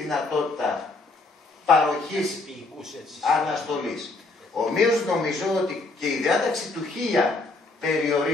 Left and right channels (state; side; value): quieter; right; 3.4 dB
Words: παροχής αναστολής. Ομοίως νομίζω ότι και η διάταξη του 1000